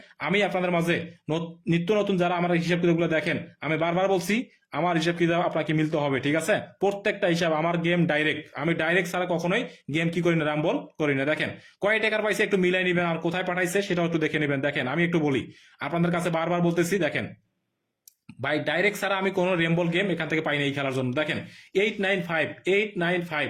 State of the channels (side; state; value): both; identical; correlation 1.00